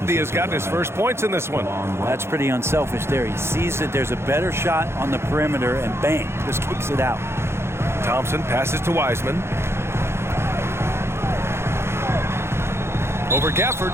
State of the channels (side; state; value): left; late; 0.12 ms